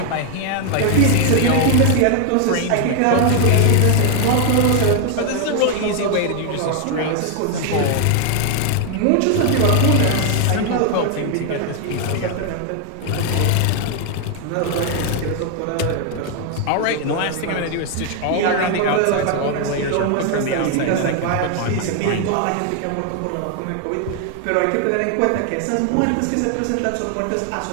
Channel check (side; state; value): both; different; correlation 0.00